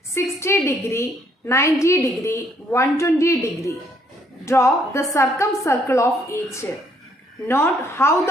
60 degree, 90 degree, 120 degree. Draw the circumcircle of each. Note how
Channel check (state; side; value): normal; both; correlation 0.68